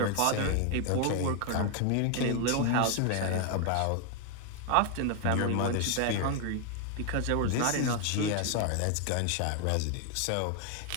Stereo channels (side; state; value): both; different; correlation 0.00